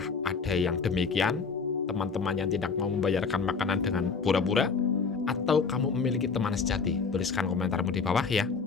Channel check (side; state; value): right; quieter; 5.1 dB